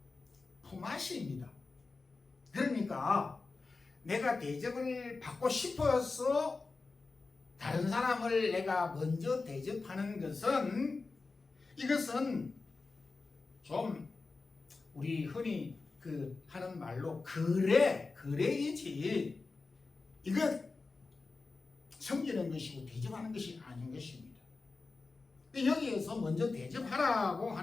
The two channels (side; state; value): right; quieter; 3.9 dB